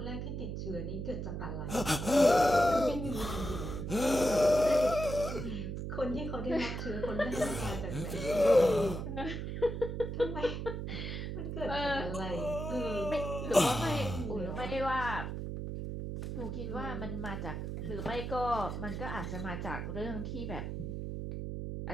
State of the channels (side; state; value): right; noise; hum, 4 dB below the sound